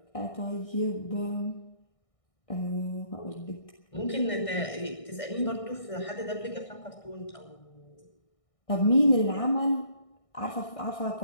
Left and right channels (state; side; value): late; right; 1.6 ms